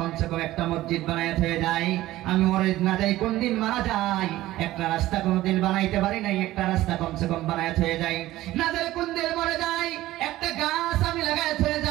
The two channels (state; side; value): quieter; left; 16.0 dB